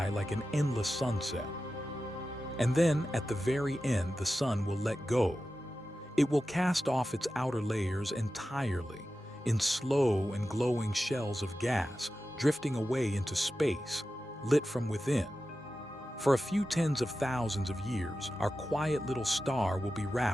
like an endless sunset. And then, at the very end, the sun will let go. It will cast off its outer layers entirely, in slow and glowing shells of gas, drifting away into space, lit from within. For a few tens of thousands of years, our quiet little star will be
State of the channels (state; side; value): normal; both; correlation 0.93